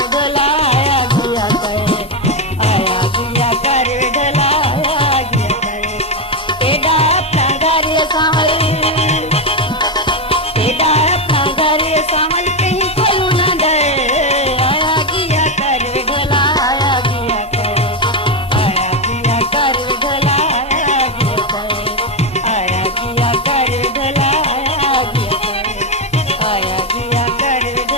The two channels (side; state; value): both; normal; correlation 0.08